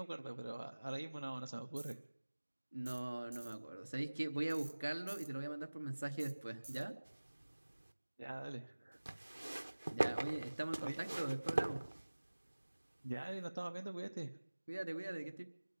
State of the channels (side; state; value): both; inverted; correlation -1.00